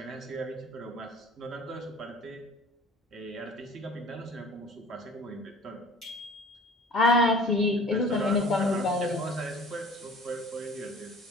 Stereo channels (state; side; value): normal; both; correlation 0.46